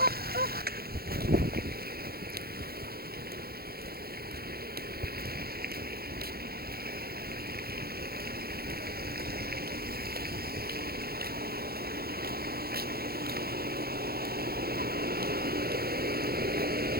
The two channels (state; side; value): late; left; 0.45 ms